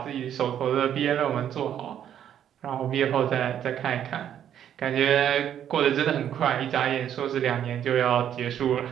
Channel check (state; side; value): quieter; left; 9.9 dB